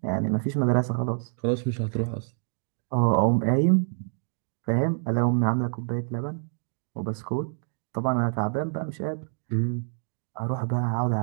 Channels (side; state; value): left; silent; 56 dB below the other